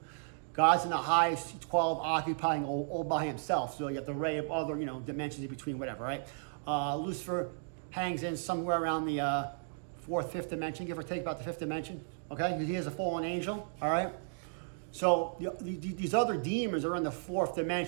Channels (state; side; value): silent; left; digital silence